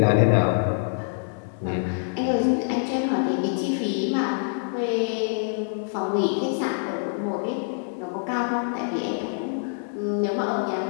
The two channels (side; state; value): right; silent; digital silence